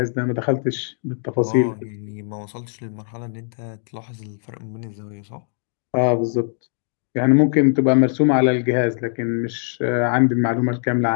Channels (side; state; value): right; silent; 62 dB below the other